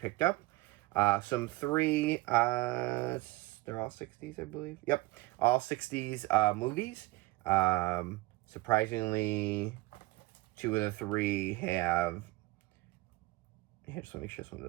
up. Some 3 they're all 60s, I believe. Yep, all 60s movies. Surprisingly, 2 of the 3 have... I just want to make sure someone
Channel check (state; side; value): quieter; left; 20.2 dB